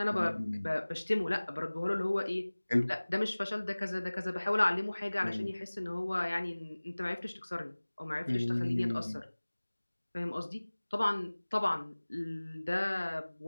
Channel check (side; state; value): both; inverted; correlation -1.00